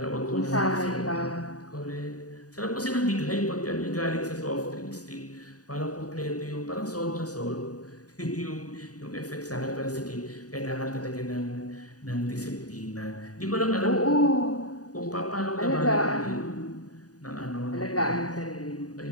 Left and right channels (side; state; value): right; late; 0.68 ms